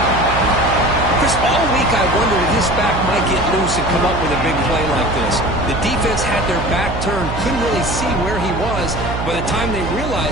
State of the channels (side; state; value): right; noise; hum, 6 dB below the sound